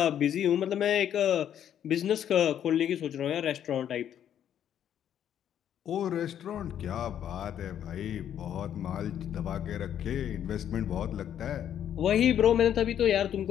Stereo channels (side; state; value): right; quieter; 9.9 dB